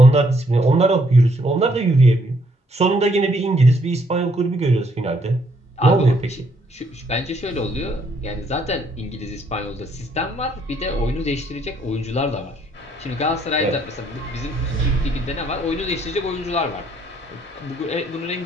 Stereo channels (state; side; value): normal; both; correlation 0.69